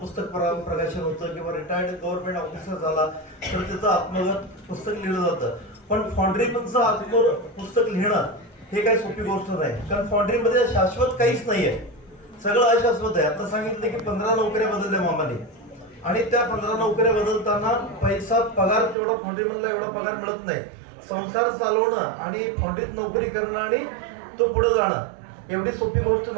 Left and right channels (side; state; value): left; drops out; at 18.9 s